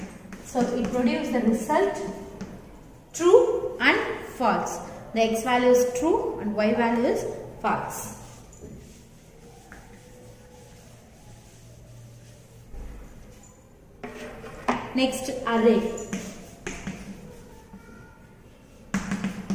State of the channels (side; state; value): both; identical; correlation 1.00